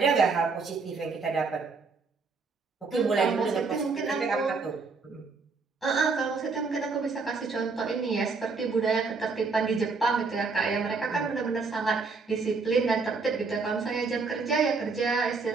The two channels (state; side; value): quieter; left; 4.5 dB